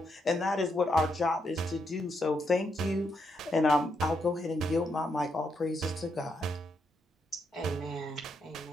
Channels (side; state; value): both; normal; correlation 0.79